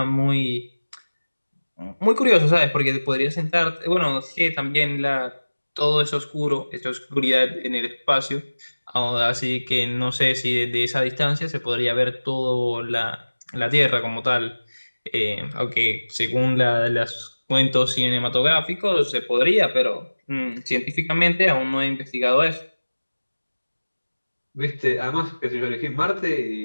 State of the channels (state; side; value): inverted; both; correlation -1.00